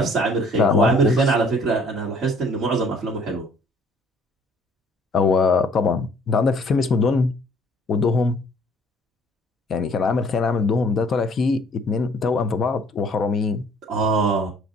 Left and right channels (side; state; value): both; normal; correlation 0.58